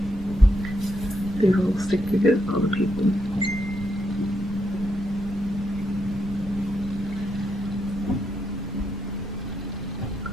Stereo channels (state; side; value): noise; right; rumble, 12 dB below the sound